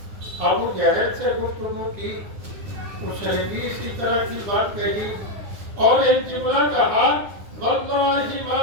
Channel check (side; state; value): left; late; 9.9 ms